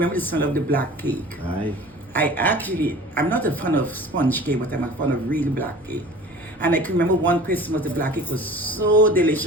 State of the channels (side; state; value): right; noise; hum, 28 dB below the sound